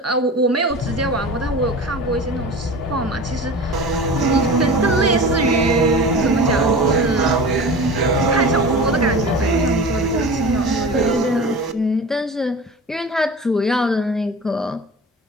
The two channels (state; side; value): normal; both; correlation 0.34